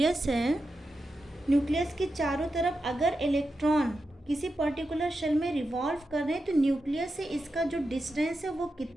है, न्यूक्लियस के चारों तरफ अगर इलेक्ट्रॉन किसी पर्टिकुलर शेल में रिवॉल्व कर रहे हैं तो न्यूक्लियस से इसका जो डिस्टेंस है वो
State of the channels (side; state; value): both; normal; correlation 0.89